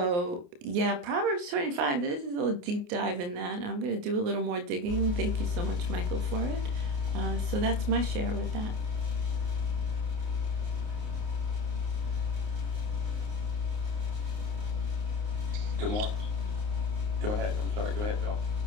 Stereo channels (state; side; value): late; left; 28 ms